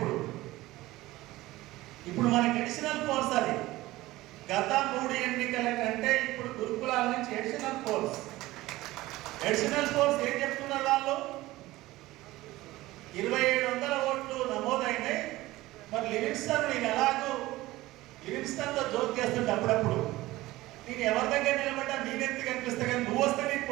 ఇప్పుడు మనకి అడిషనల్ ఫోర్స్ అది. గత 3 ఎన్నికల కంటే ఇప్పుడు గురుకులాల నుంచి అడిషనల్ ఫోర్స్ ఏం చెప్తున్నారు వాళ్ళు? 2700 ఓట్లు నమోదైనాయి. మరి లివింగ్స్టన్ నేను ఎలాగో లివింగ్స్టన్తో జోక్ చేస్తుంటే అప్పుడప్పుడు నేను ఎవరి దగ్గర నిలబడ్డా నేనెత్తి కనిపిస్తా, కానీ నువ్వు వస్తే నీకు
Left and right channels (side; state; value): left; quieter; 18.0 dB